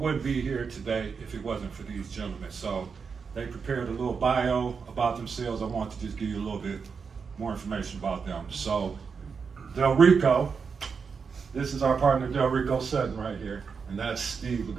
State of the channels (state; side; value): quieter; left; 5.7 dB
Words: be here today if it wasn't for these gentlemen. So they prepared a little bio about themselves. I want to just give you a little bit more information about them. So Delrico, this is our partner Delrico Sutton right here, and that's Steve